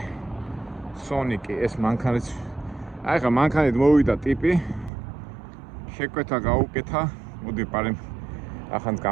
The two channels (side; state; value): left; drops out; at 4.9 s